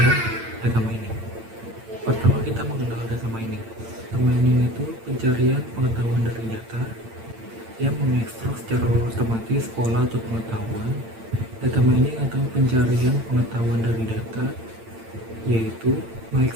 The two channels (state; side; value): late; left; 8.8 ms